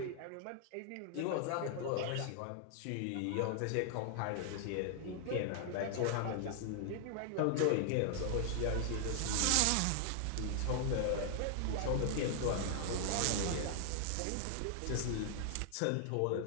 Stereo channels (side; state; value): both; different; correlation 0.00